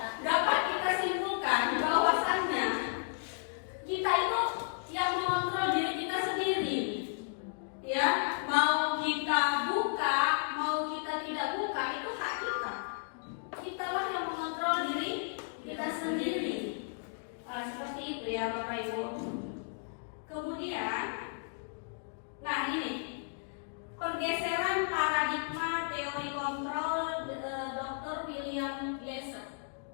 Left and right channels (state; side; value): silent; right; digital silence